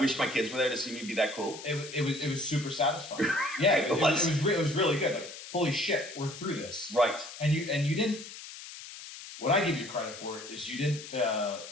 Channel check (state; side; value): noise; left; hiss, 13 dB below the sound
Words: my kids were there to see me be that cool. It was super satisfying. Yeah, it was really good. Like, holy shit, we're through this. Right. And you didn't. What I give you credit for is you didn't